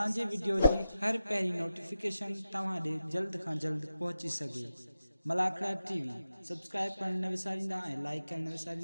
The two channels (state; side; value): inverted; both; correlation -0.91